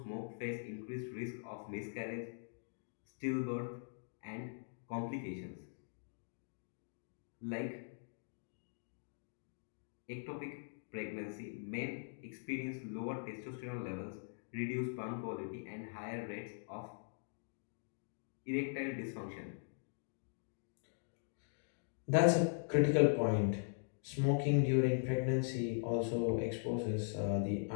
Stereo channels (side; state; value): right; silent; digital silence